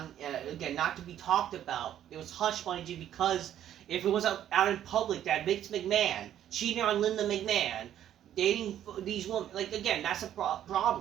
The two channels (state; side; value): quieter; left; 11.0 dB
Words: to be talked about. It was hush money because if it was out in public that Vince McMahon cheating on Linda McMahon, dating these women, like, again, that's a